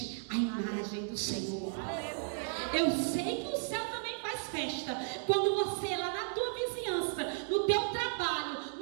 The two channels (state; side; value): silent; left; digital silence